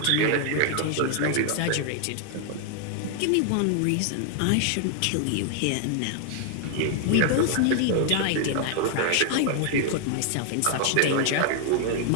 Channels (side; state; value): both; different; correlation 0.00